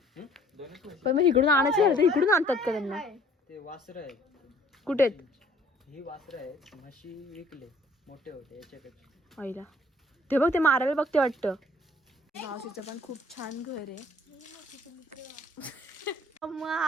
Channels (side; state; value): both; normal; correlation 0.57